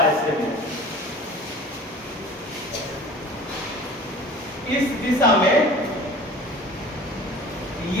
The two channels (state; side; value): normal; both; correlation 0.43